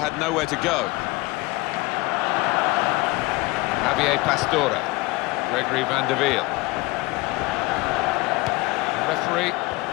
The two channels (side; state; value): right; quieter; 22.3 dB